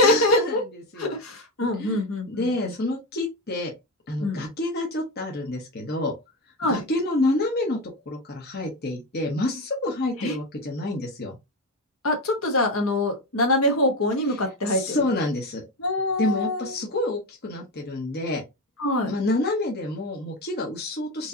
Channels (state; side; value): normal; both; correlation 0.16